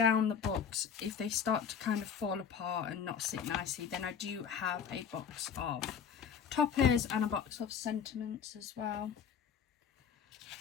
the books, if they start to kind of fall apart and not sit nicely, then I do have a box of toppers and a box of sentiments as well.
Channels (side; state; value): right; quieter; 7.6 dB